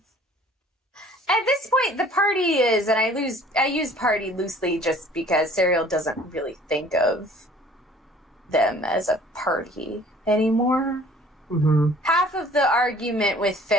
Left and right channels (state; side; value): normal; both; correlation 0.52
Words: At this point, the party is, and I use party loosely just because Serial doesn't really think of them as a party anymore. Mm-hmm. Half of the argument with